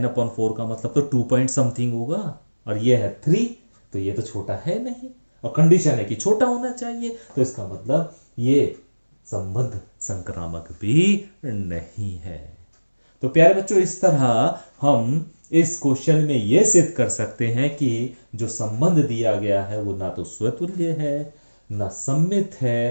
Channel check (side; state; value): both; inverted; correlation -1.00